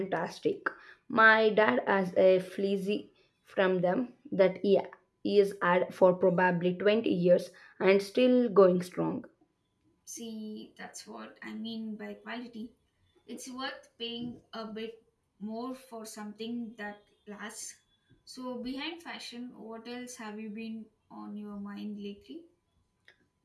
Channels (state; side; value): identical; both; correlation 1.00